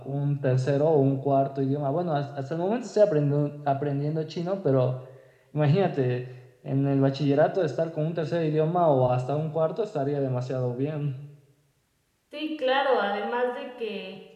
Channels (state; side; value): identical; both; correlation 1.00